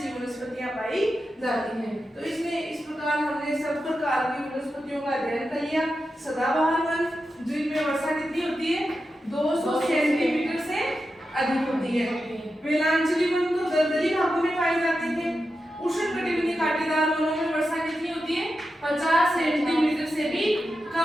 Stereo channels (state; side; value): normal; both; correlation 0.90